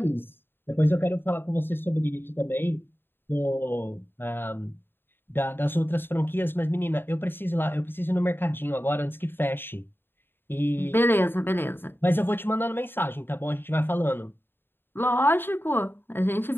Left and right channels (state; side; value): late; right; 0.10 ms